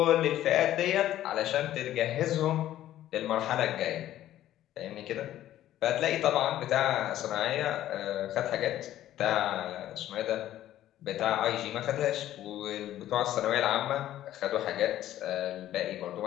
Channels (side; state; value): right; quieter; 13.0 dB